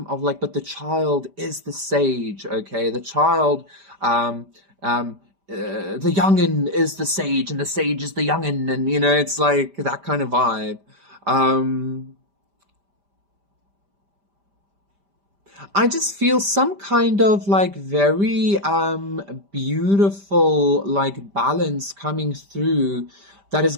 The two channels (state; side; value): late; left; 5.0 ms